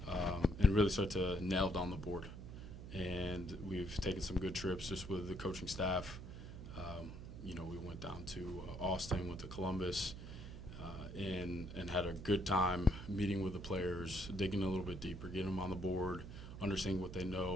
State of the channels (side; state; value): right; noise; hum, 11 dB below the sound